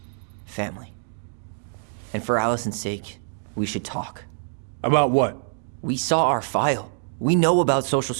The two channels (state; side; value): silent; left; digital silence